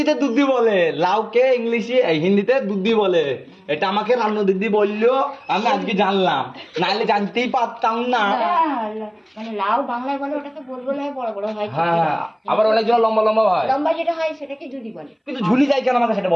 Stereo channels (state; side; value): identical; both; correlation 1.00